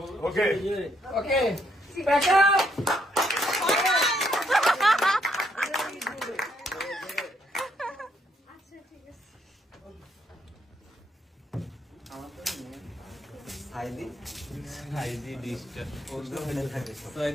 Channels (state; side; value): normal; both; correlation 0.73